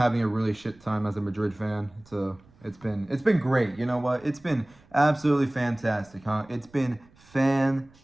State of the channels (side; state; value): right; noise; rumble, 29 dB below the sound